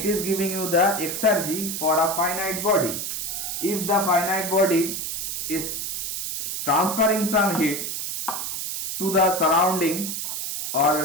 is giving you the Exergy for a finite body. If the finite body is transferring some heat to the surrounding,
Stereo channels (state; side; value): noise; right; hiss, 4 dB below the sound